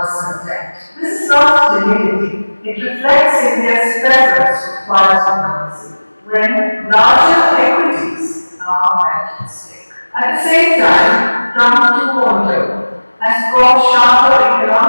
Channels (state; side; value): inverted; both; correlation -1.00